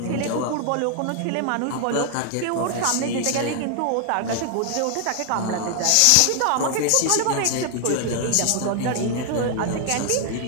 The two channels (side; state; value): both; different; correlation 0.00